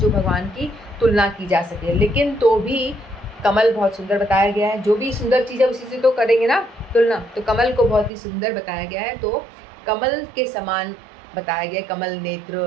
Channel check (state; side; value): drops out; left; at 8.1 s